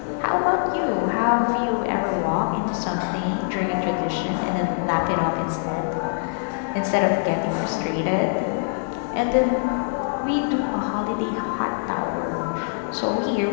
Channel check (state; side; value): silent; right; 63 dB below the other